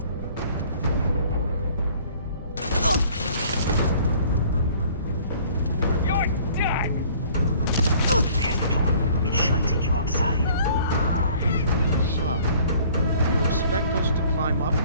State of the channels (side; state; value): both; inverted; correlation -0.54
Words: You're done! There's the door. It should take you outside. Son, you expect us to climb up